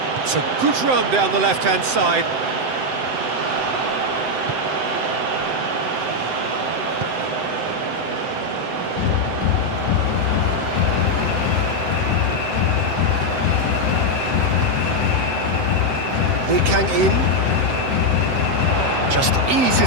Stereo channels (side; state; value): left; late; 7.8 ms